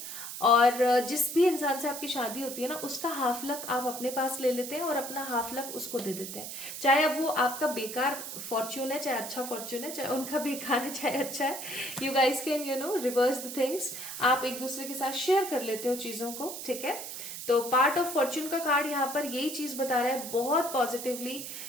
और जिस भी इंसान से आपकी शादी होती है ना, उसका हाफ लक आप अपने पास ले लेते हैं और अपना हाफ लक उसको दे देते हैं। चाहे अब वो आपका बेकार फॉर्च्यून है, चाहे अच्छा फॉर्च्यून है, चाहे उनका बेकार है, चाहे अच्छा है, you guys can reverse the things. आप एक दूसरे के साथ शेयर कर लेते हो चीजों को। ठीक है, तो पार्ट ऑफ फॉर्च्यून का कार्ड यहाँ पर यही चीज बता रहा है बहुत पॉजिटिवली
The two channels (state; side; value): noise; right; hiss, 8 dB below the sound